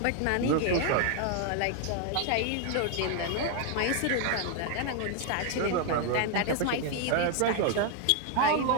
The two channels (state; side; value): different; both; correlation 0.00